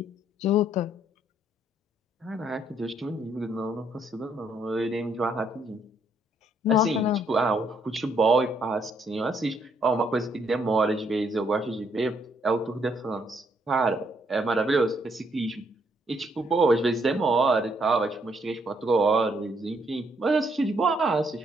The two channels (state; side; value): normal; both; correlation 0.71